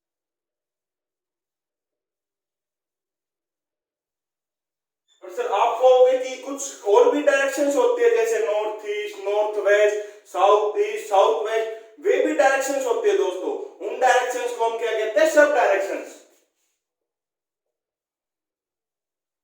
और सर आप कहोगे कि कुछ और भी डायरेक्शंस होती है, जैसे north east, north west, south east, south west, वे भी डायरेक्शंस होती है दोस्तों। उन डायरेक्शंस को हम क्या कहते हैं? सब डायरेक्शंस।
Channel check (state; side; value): identical; both; correlation 1.00